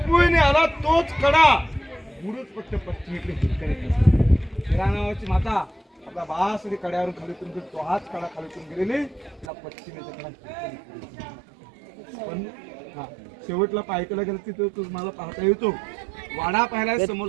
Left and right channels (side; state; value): left; drops out; at 9.5 s